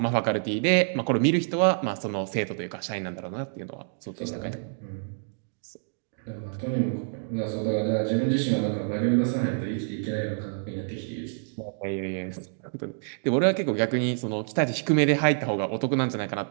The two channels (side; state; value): left; silent; digital silence